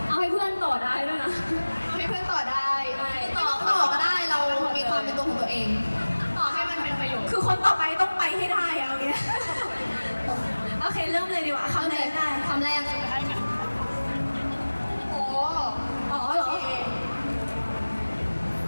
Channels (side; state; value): both; inverted; correlation -1.00